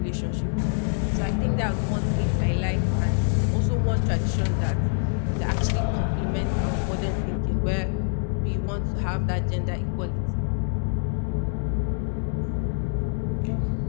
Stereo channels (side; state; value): right; silent; 61 dB below the other